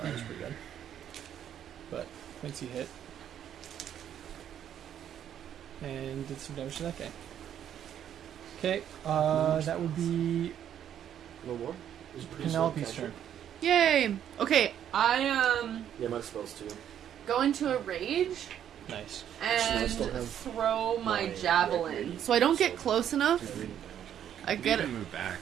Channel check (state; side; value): quieter; left; 9.9 dB